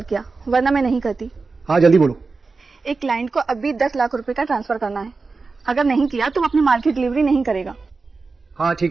किया, वरना मैं नहीं करती। हाँ जल्दी बोलो। एक क्लाइंट को अभी 10 लाख रुपए का ट्रांसफर करना है, अगर नहीं किया तो वो अपनी माल की डिलीवरी नहीं करेगा। हाँ ठीक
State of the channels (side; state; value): left; quieter; 4.1 dB